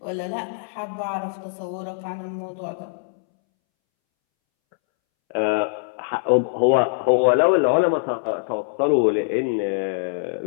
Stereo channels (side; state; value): right; silent; 63 dB below the other